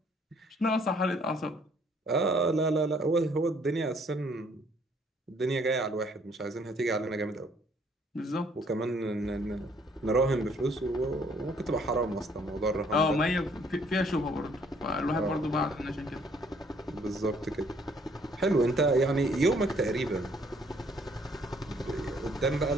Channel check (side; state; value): both; normal; correlation 0.63